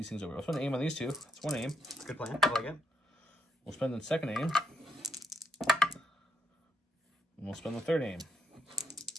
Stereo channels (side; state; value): both; normal; correlation 0.79